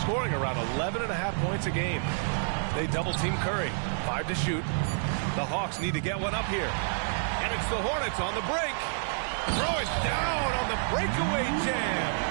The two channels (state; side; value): silent; left; 59 dB below the other